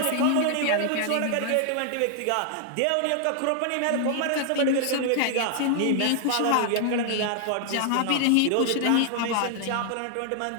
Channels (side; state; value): both; different; correlation 0.00